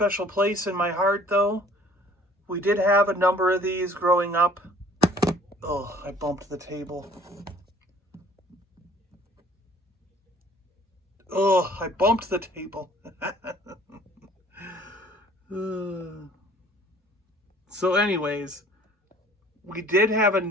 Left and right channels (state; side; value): normal; both; correlation 0.54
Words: place in my heart, though. We did have a number of these growing up. Oh, I bumped the table. Oh, I bumped the table. So anyways, we did have a